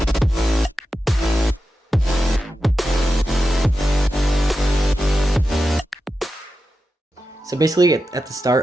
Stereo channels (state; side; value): normal; both; correlation 0.90